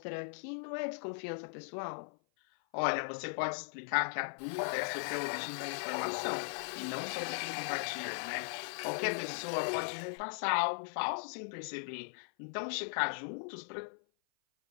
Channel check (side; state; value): right; silent; 52 dB below the other